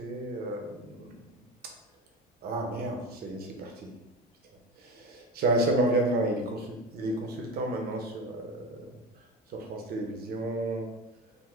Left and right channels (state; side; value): normal; both; correlation 0.25